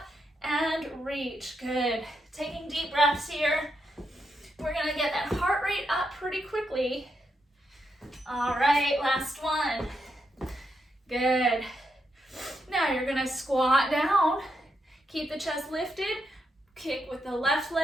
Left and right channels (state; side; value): normal; both; correlation 0.82